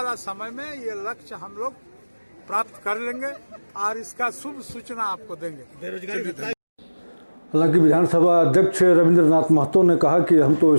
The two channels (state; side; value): inverted; both; correlation -1.00